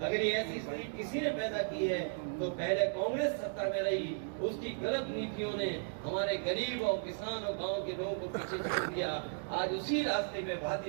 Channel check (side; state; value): left; silent; digital silence